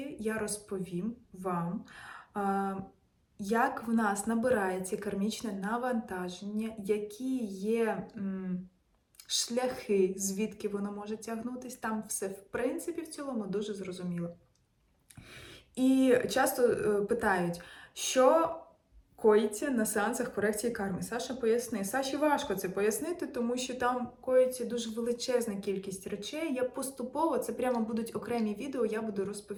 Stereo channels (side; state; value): both; identical; correlation 1.00